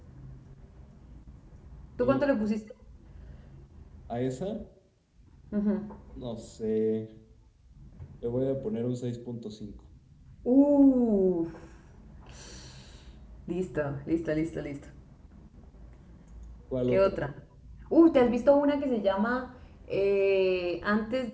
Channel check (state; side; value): identical; both; correlation 1.00